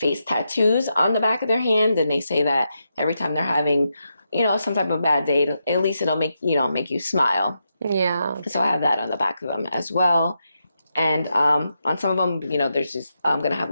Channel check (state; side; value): inverted; both; correlation -0.85